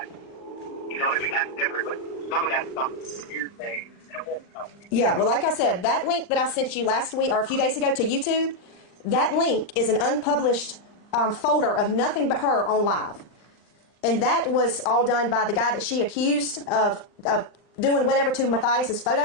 You know what I mean? That's different. But some of that stuff is hearsay. Yeah, well, like I said, that link that I sent you last week or a few days ago to YouTube, that link is an unpublished folder of nothing but her on live. And that was all done by the guy that she accused of doing whatever to Matthias's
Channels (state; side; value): late; right; 39 ms